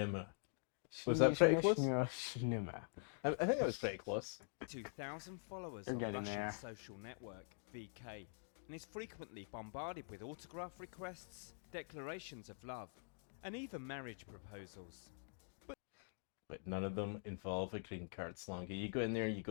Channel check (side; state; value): right; silent; digital silence